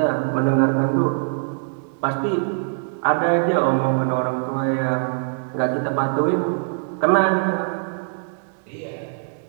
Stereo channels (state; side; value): silent; left; digital silence